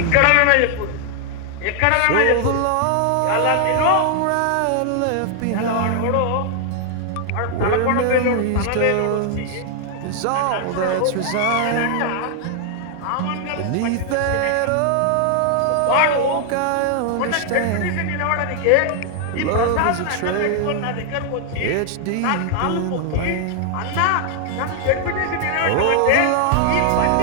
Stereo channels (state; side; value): different; both; correlation 0.00